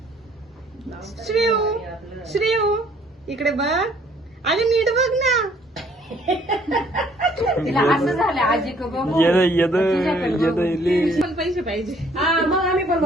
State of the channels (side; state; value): both; normal; correlation 0.61